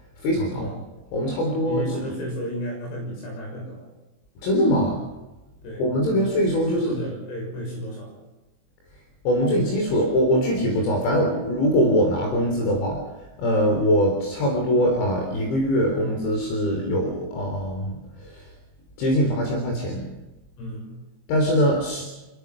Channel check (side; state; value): right; late; 22 ms